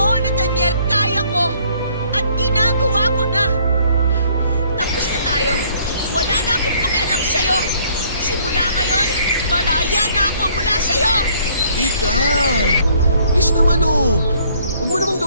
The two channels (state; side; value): inverted; both; correlation -0.62